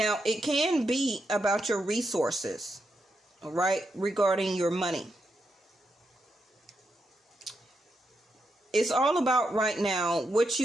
it can be about your resources, all right, regarding your money. It's all about right now what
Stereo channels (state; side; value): normal; both; correlation 0.84